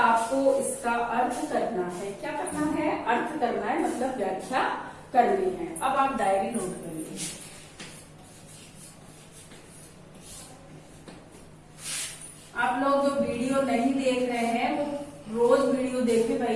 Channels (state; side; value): identical; both; correlation 1.00